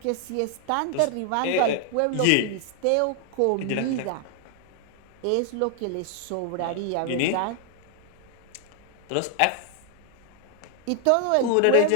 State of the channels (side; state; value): both; different; correlation 0.00